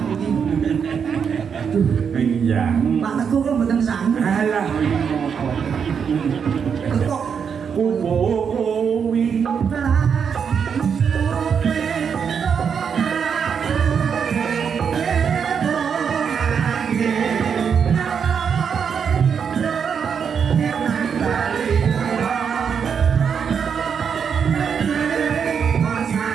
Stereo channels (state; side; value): quieter; left; 6.9 dB